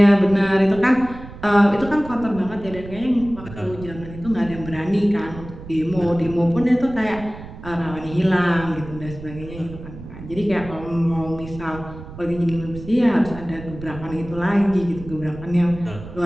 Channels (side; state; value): right; noise; rumble, 14 dB below the sound